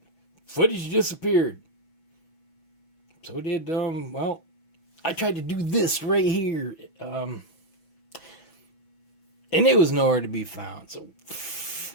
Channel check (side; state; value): right; late; 6.1 ms